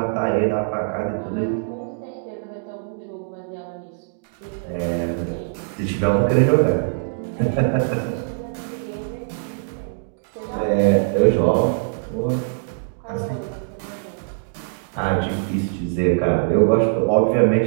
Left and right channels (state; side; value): silent; left; digital silence